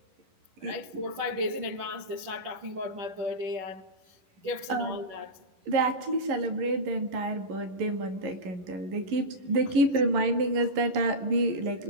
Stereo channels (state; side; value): late; left; 11 ms